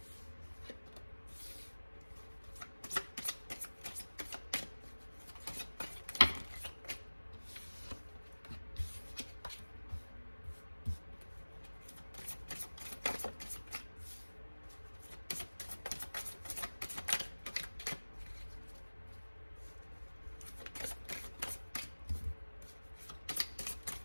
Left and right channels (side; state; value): both; inverted; correlation -1.00